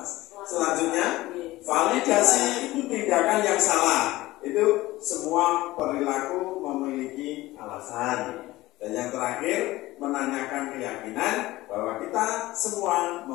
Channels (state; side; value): quieter; right; 18.0 dB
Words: Selanjutnya, validasi tindakan yang salah. Itu semua perilaku memiliki alasan. Dan yang terakhir, menanyakan keyakinan bahwa kita semua